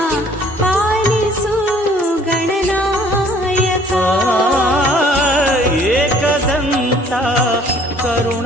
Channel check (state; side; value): normal; both; correlation 0.57